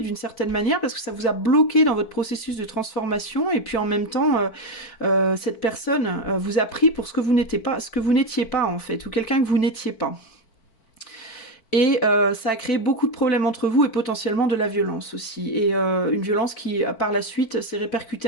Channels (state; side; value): late; right; 4.5 ms